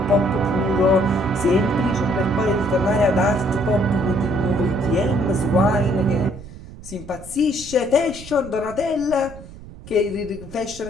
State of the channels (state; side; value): noise; right; rumble, 16 dB below the sound